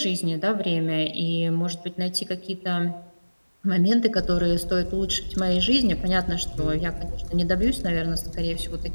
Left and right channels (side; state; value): both; inverted; correlation -1.00